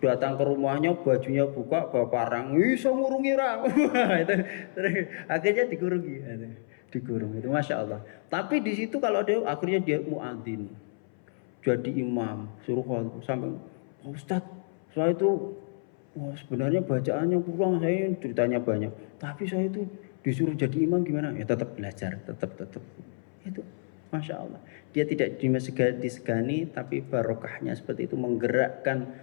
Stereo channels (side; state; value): right; silent; 58 dB below the other